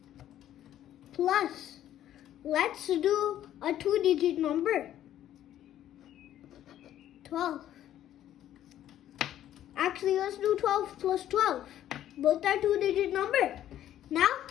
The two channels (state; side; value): quieter; right; 11.8 dB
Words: Plus, let's do a 2-digit number, 12. Actually, let's do 12 plus 12. Both are 2-digit number. Now,